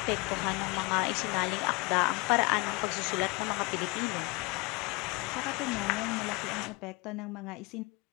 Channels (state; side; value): quieter; right; 25.9 dB